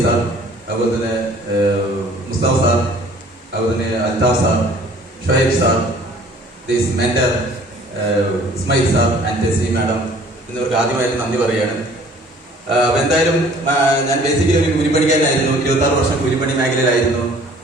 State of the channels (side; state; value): both; normal; correlation 0.53